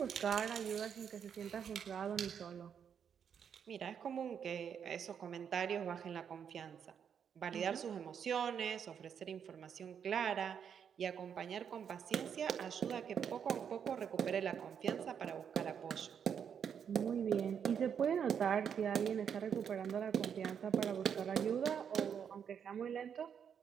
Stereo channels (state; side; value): quieter; left; 7.7 dB